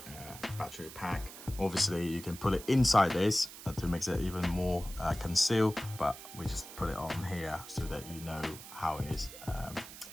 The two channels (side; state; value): right; noise; hiss, 14 dB below the sound